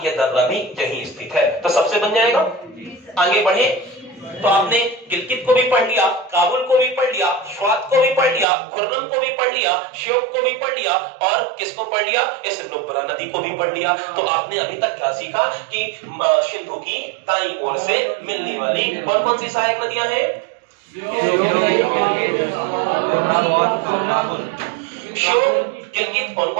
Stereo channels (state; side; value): drops out; left; at 8.5 s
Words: ये दर्रा भी यहीं स्थित है। तो सबसे बन जाएगा। आगे बढ़े तो आपने गिलगित को भी पढ़ लिया, काबुल को भी पढ़ लिया, स्वात को भी पढ़ लिया, खुर्रम को भी पढ़ लिया, श्योक को भी पढ़ लिया, और किसको पढ़ लिया? इस नुब्रा नदी को भी पढ़ लिया। तो आपने अभी तक क्या सीखा कि सिंधु की दाईं ओर से मिलने वाली कौन कौन सी सहायक नदियां हैं? श्योक, गिलगित, कौन